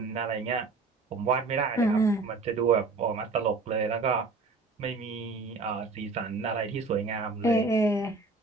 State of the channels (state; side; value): quieter; left; 3.9 dB